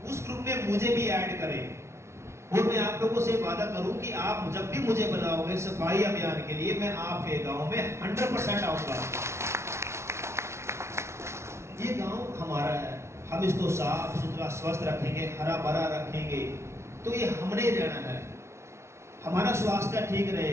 उस ग्रुप में मुझे भी ऐड करें। और मैं आप लोगों से वादा करूं कि आप जब भी मुझे बुलाओगे सफाई अभियान के लिए, मैं आपके गांव में 100% आऊंगा। ये गांव हमारा है, हम इसको साफ सुथरा स्वस्थ रखेंगे, हरा भरा रखेंगे, तो ये हमने रहना है। हमारा स्वास्थ्य ठीक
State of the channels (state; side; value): late; left; 0.13 ms